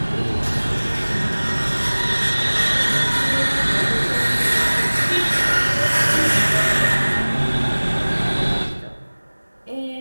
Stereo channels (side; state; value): both; inverted; correlation -1.00